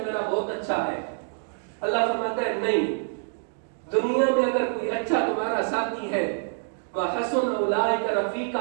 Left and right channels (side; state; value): left; silent; digital silence